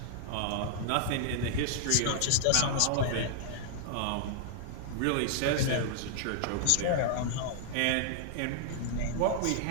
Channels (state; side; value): different; both; correlation -0.01